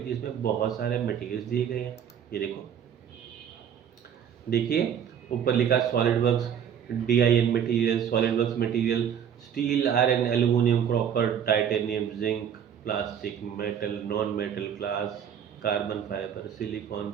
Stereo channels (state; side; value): quieter; left; 8.6 dB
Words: जिसमें बहुत सारे मटेरियल्स दिए गए हैं। ये देखो, देखिए ऊपर लिखा solid works DIN material, solid works material, steel, iron, aluminium, copper, titanium, zinc, plastic, metal, non metal, glass, carbon fibre, silicon,